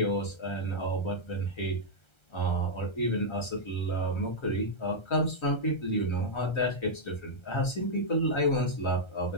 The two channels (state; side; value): late; right; 1.3 ms